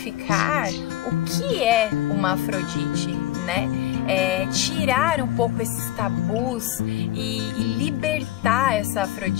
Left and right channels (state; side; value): quieter; right; 14.6 dB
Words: o que é uma Afrodite, né? Tirar um pouco esses tabus e libertar essa